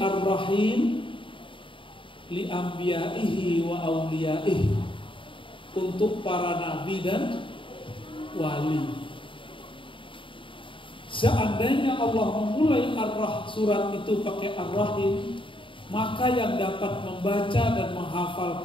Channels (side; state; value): right; late; 0.25 ms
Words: li anbiya'ihi wa awliyaihi, untuk para nabi dan wali. Seandainya Allah memulai surat itu pakai Ar-Rahim, maka yang dapat membaca dan menghafal